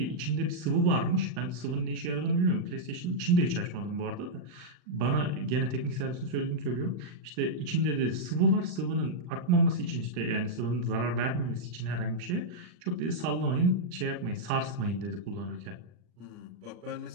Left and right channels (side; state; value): left; late; 39 ms